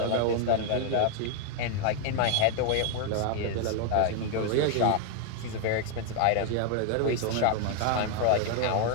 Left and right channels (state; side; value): different; both; correlation 0.00